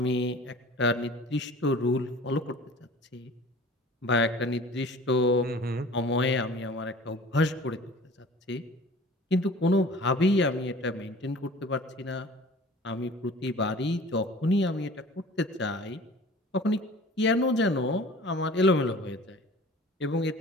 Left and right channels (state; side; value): normal; both; correlation 0.44